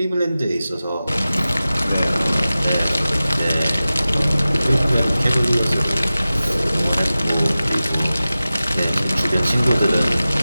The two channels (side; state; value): both; inverted; correlation -0.95